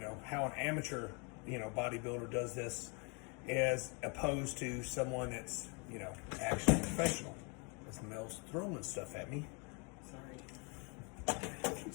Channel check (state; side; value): quieter; right; 33.8 dB